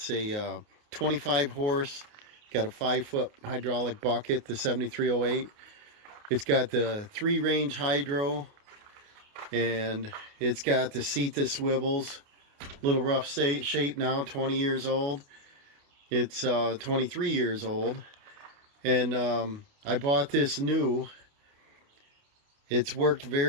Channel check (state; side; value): late; left; 29 ms